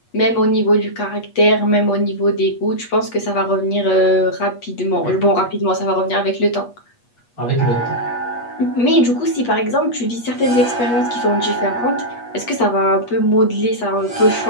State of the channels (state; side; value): late; right; 8.3 ms